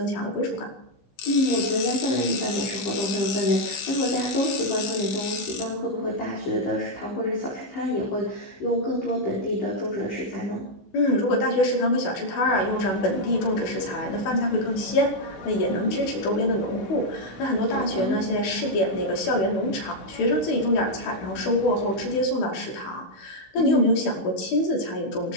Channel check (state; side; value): late; right; 16 ms